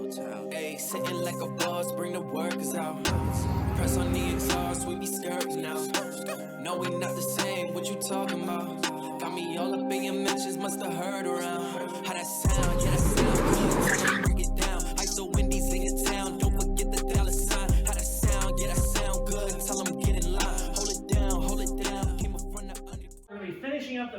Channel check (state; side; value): identical; both; correlation 1.00